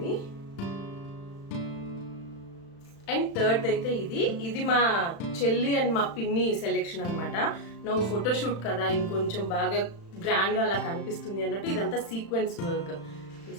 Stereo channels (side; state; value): right; late; 35 ms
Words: అండ్ థర్డ్ అయితే ఇది మా చెల్లి అండ్ మా పిన్ని సెలెక్షన్ అనమాట. నువ్వు ఫోటోషూట్ కదా ఇంకొంచెం బాగా గ్రాండ్గా అలా కనిపిస్తుంది అన్నట్టు ఇదంతా సీక్వెన్స్ వర్క్.